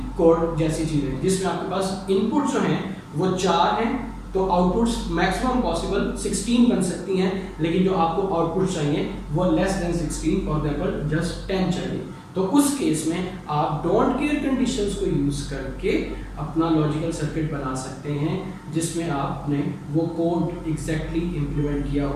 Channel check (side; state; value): both; identical; correlation 1.00